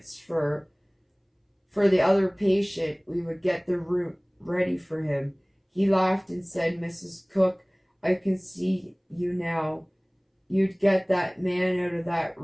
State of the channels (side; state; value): both; identical; correlation 1.00